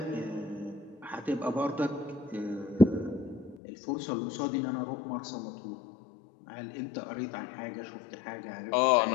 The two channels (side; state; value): right; drops out; at 3.6 s